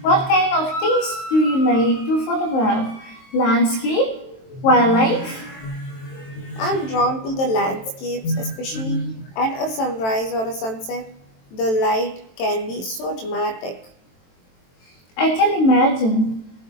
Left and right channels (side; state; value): right; late; 22 ms